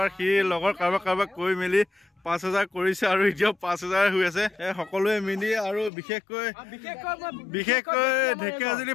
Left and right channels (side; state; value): right; drops out; at 5.9 s